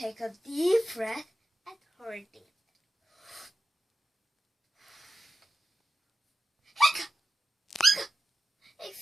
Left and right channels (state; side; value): normal; both; correlation 0.90